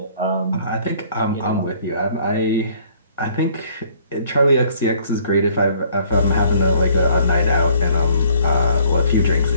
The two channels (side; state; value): both; inverted; correlation -0.60